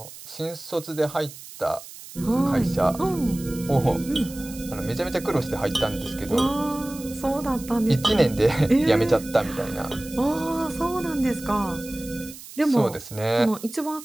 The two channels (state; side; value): noise; right; hiss, 15 dB below the sound